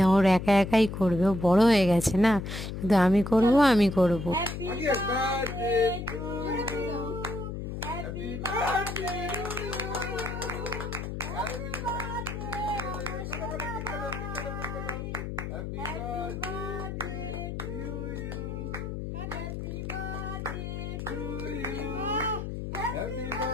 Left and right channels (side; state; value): left; noise; hum, 5 dB below the sound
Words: ওর একা একাই করবে। ও বড় হয়ে গেছে না, শুধু আমি করব আমি করব। Happy birthday to you. Happy birthday to you. Happy